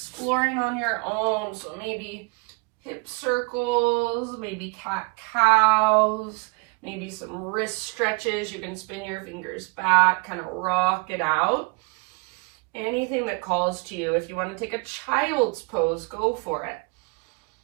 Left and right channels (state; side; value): quieter; left; 29.2 dB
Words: on your own. So maybe hip circles, maybe cat-cows, maybe some wrist stretches. You can spin your fingers back, kind of rock it out. Anything that calls to you. If you want to take a child's pose, go for it.